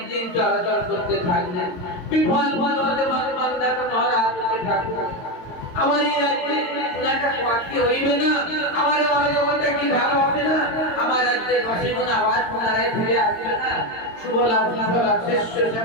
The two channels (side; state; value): right; late; 22 ms